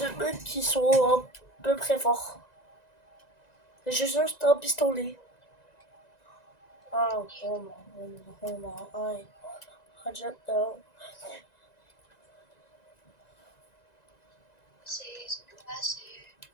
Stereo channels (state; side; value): late; right; 1.9 ms